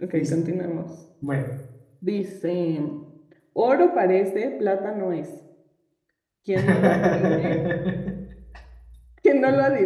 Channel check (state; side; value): identical; both; correlation 1.00